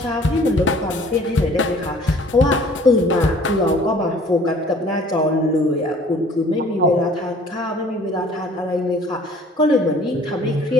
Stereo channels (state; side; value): normal; both; correlation 0.52